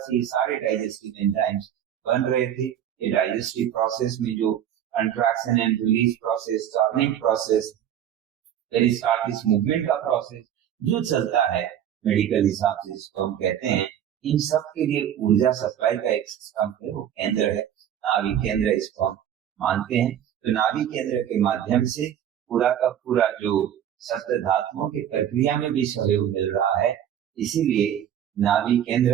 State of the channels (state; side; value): quieter; left; 10.2 dB